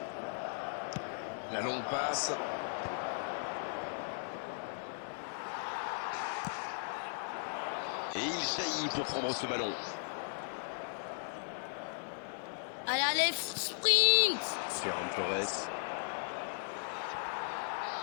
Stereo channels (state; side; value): silent; right; digital silence